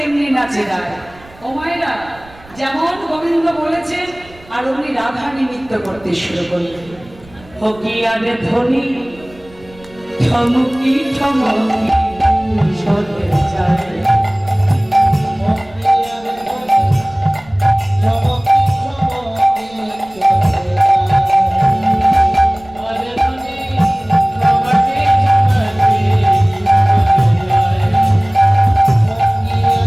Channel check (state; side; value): noise; right; rumble, 24 dB below the sound